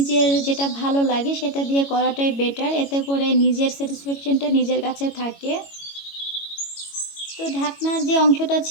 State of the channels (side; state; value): right; late; 22 ms